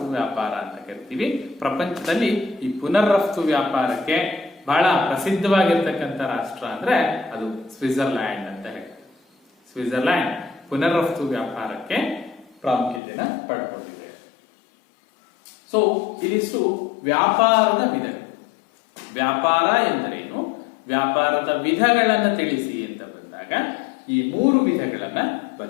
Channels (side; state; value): right; drops out; at 13.0 s